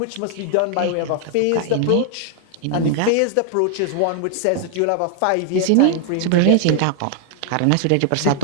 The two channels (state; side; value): different; both; correlation 0.00